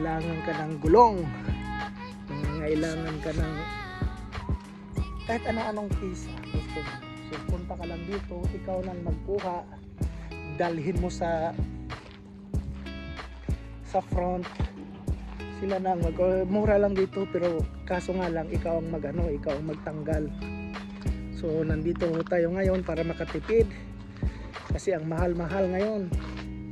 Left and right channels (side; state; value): both; identical; correlation 1.00